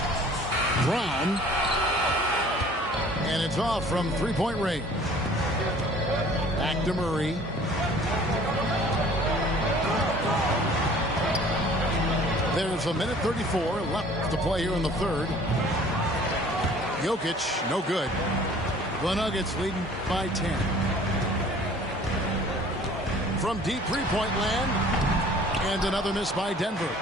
Brown. And it's off from three-point range. Back to Murray. There's a minute 34 left to play here in the third. Jokic, no good. The Nuggets leading by 10. From deep three-point land. And another miss by Denver.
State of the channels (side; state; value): both; normal; correlation 0.51